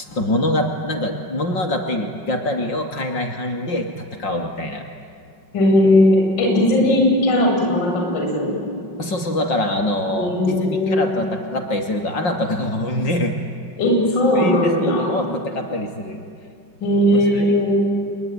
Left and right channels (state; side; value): late; right; 5.4 ms